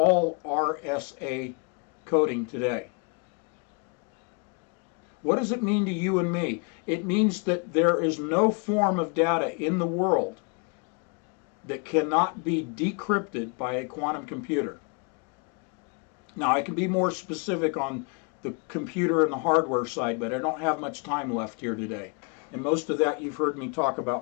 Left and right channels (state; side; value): quieter; right; 36.6 dB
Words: RSA coding today. What does it mean to you and me? It means that there is no form of data in the world that cannot be decrypted by a quantum computer. Now, I can be more specific on the computer and the hardware side, but I don't have much time left here today. And most of that you've heard me talk